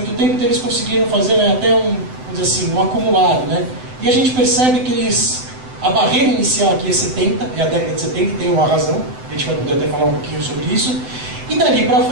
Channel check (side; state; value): left; late; 7.9 ms